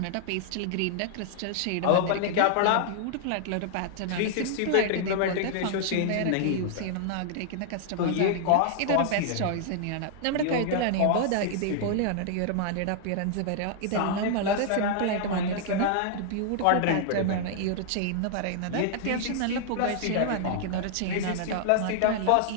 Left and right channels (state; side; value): different; both; correlation -0.01